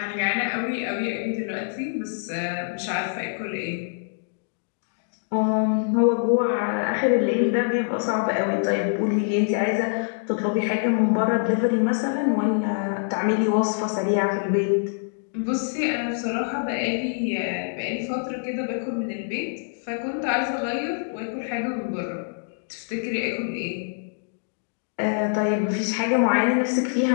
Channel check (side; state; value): right; silent; digital silence